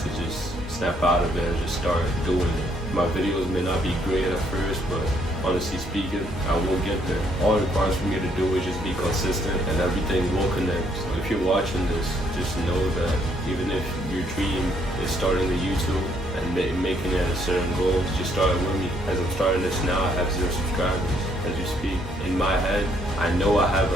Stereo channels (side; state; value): both; normal; correlation 0.69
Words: just snap out of it and just start doing it. My videos may not be great at first, but honestly speaking, I will get there. All it requires for me to do is just be consistent, and everything will connect. So if you're watching this, just know that even if your dream is starting a YouTube and making it a certain goal, just start with me. As I'm starting this now, I have 0 subscribers as you speak. In my head, I know I have